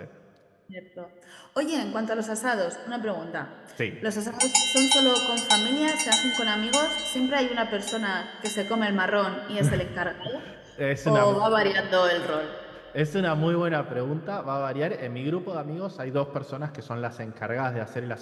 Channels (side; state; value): both; identical; correlation 1.00